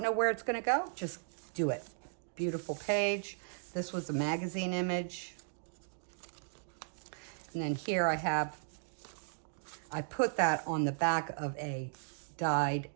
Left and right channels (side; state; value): left; silent; digital silence